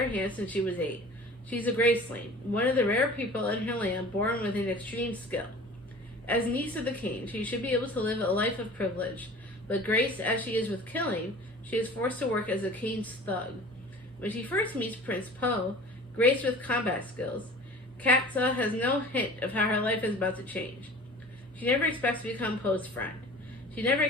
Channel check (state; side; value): normal; both; correlation 0.42